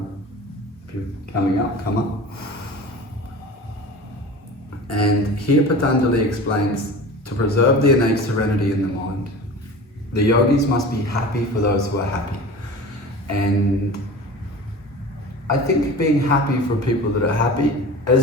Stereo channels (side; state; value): both; normal; correlation 0.36